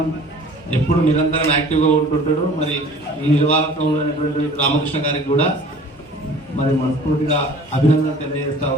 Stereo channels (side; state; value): both; normal; correlation 0.48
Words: ఎప్పుడు నిరంతరం యాక్టివ్గా ఉంటుంటాడు. మరి ఈ నిర్వాహకంలో అయినటువంటి రామకృష్ణ గారికి కూడా మరి మనస్ఫూర్తిగా అభినందన తెలియజేస్తా